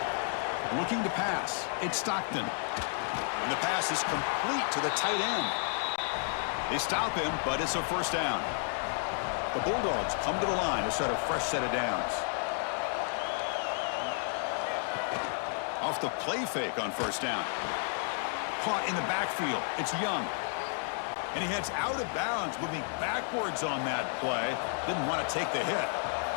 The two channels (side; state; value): right; silent; 57 dB below the other